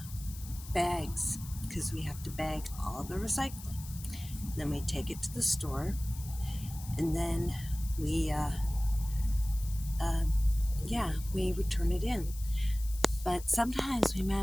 bags because we have to bag all the recycling. Then we take it to the store and then we, uh, uh, we return it in. But sometimes we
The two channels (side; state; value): left; noise; hiss, 15 dB below the sound